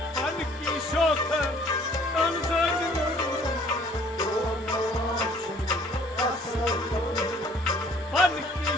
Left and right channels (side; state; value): both; normal; correlation 0.57